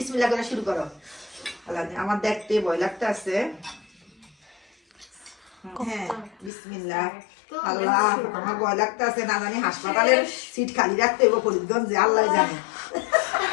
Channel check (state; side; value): drops out; right; at 6.5 s